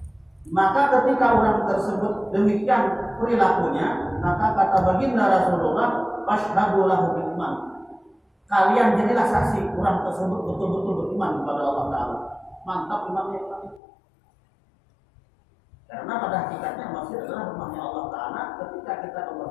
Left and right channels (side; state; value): right; drops out; at 13.8 s